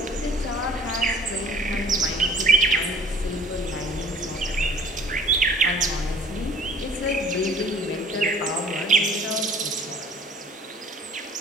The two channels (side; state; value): both; normal; correlation 0.52